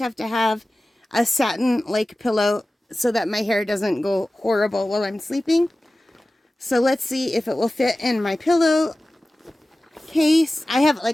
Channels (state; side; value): normal; both; correlation 0.96